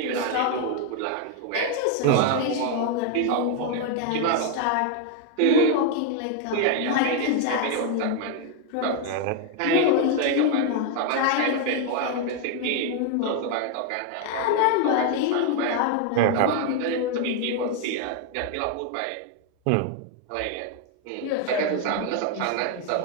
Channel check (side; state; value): both; different; correlation 0.00